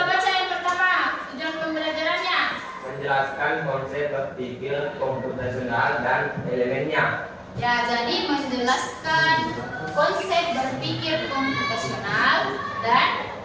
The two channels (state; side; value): identical; both; correlation 1.00